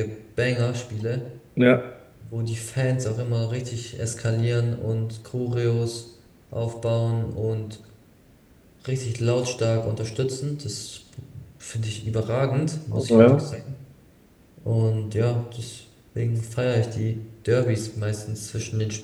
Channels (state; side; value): identical; both; correlation 1.00